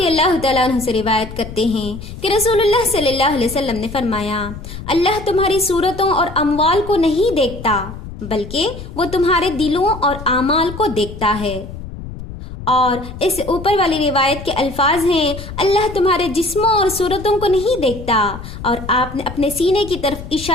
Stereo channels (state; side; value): noise; left; rumble, 11 dB below the sound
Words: اللہ تعالیٰ عنہ سے روایت کرتے ہیں کہ رسول اللہ صلی اللہ علیہ وسلم نے فرمایا، اللہ تمہاری صورتوں اور اموال کو نہیں دیکھتا، بلکہ وہ تمہارے دلوں اور اعمال کو دیکھتا ہے۔ اور اس اوپر والی روایت کے الفاظ ہیں، اللہ تمہارے جسموں اور صورتوں کو نہیں دیکھتا، اور آپ نے اپنے سینے کی طرف